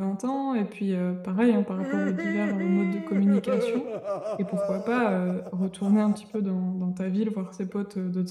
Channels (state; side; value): identical; both; correlation 1.00